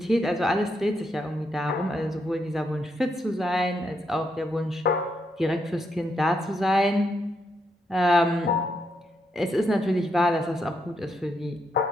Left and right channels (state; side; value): normal; both; correlation 0.79